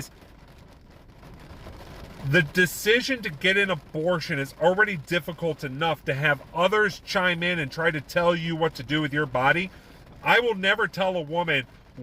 the decision to get an abortion is already difficult enough. To have others chime in and try to tell you what to do with your body. I will never tell a woman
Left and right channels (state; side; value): identical; both; correlation 1.00